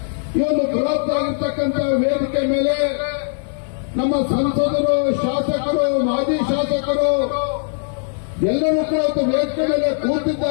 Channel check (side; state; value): right; silent; digital silence